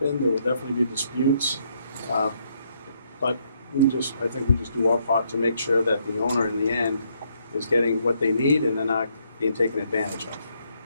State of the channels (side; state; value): both; inverted; correlation -0.73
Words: There will definitely be disputes, but I think we just do our part to make sure that the owner in the end is getting what they need and they're not being taken advantage of.